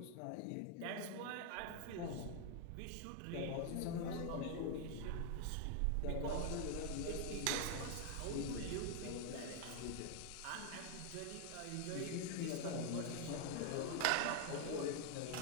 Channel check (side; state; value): both; different; correlation 0.00